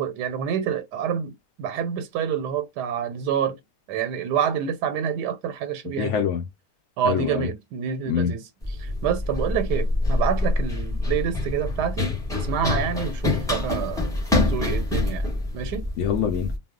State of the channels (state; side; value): normal; both; correlation 0.23